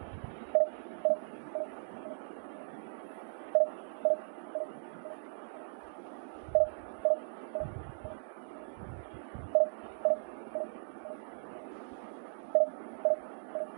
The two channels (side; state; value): left; silent; digital silence